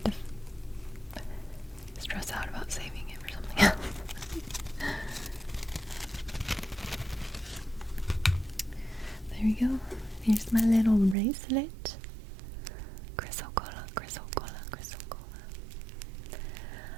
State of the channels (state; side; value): drops out; left; at 11.2 s